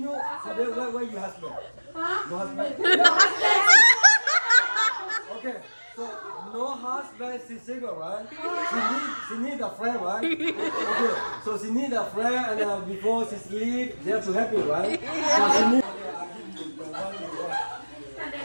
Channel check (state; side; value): inverted; both; correlation -1.00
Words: So where you husband? No husband? Okay. So no husband, she's single, right? She need a friend, right? Okay. So she need a friend, and before she sleep, they have to help you, right? So she need.